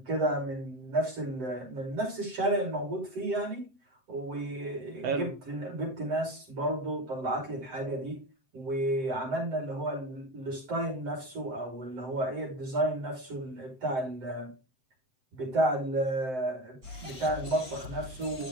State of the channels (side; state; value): left; late; 7.8 ms